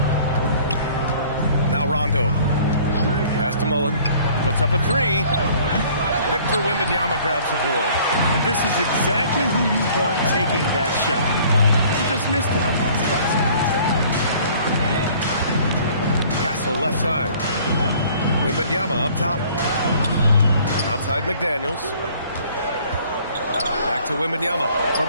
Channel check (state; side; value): inverted; both; correlation -0.54